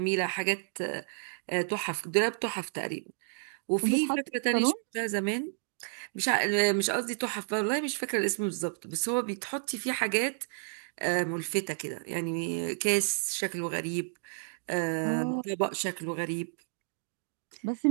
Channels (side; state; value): left; silent; digital silence